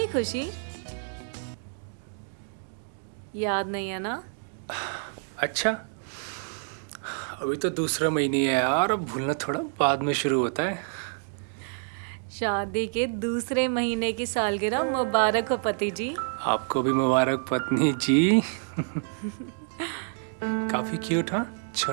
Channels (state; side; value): silent; left; 59 dB below the other